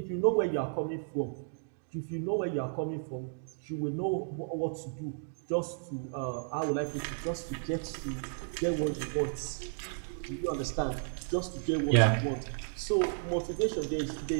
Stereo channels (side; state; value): left; silent; digital silence